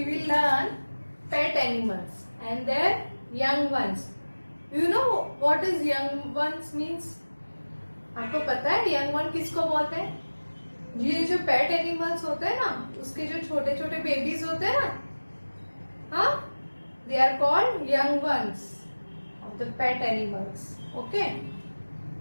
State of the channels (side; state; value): both; inverted; correlation -1.00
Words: will learn pet animals and their young ones. You know what is young ones means? आपको पता है young one किसको बोलते हैं? ये जो pet animals होते हैं ना, उसके जो छोटे छोटे बेबीज होते हैं ना, हाँ, they are called young ones of the pet animals. Okay?